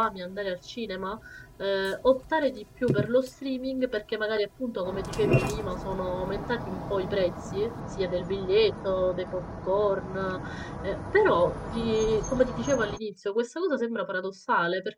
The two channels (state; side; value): identical; both; correlation 1.00